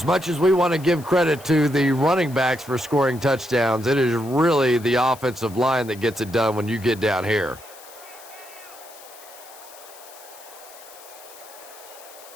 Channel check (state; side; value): noise; left; hiss, 20 dB below the sound